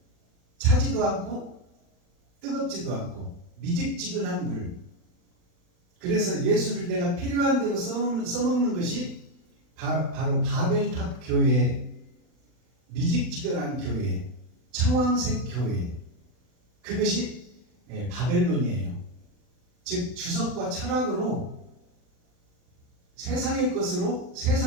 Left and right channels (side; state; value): left; late; 40 ms